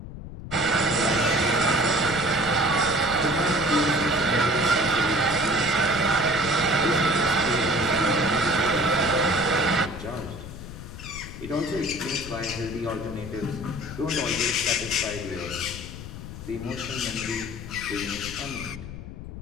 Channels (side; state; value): left; noise; rumble, 11 dB below the sound